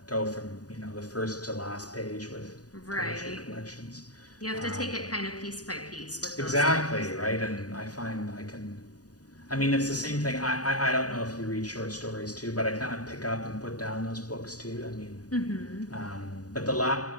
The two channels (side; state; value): right; late; 0.68 ms